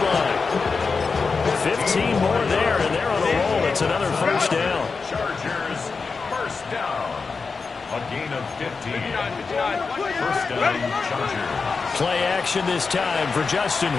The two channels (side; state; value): right; quieter; 4.7 dB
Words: line. 15 more there, and they're on a roll. It's another 1st down. Chargers, 1st down. A gain of 15. 1st down, Chargers. Play action this time for Justin